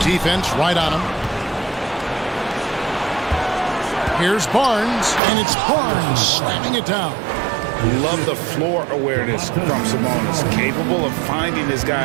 Defense right on him. Here's Barnes, and it's Barnes slamming it down. Love the floor awareness from Sabonis, capable of finding his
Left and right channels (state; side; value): drops out; left; at 5.2 s